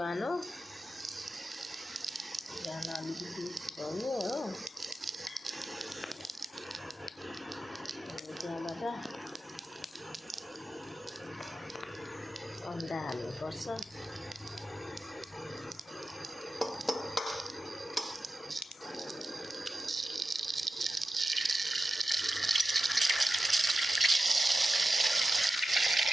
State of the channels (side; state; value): both; normal; correlation 0.92